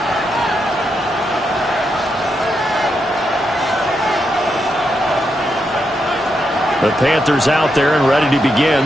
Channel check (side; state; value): both; normal; correlation 0.83